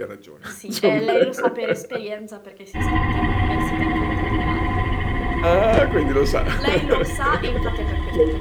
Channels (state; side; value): identical; both; correlation 1.00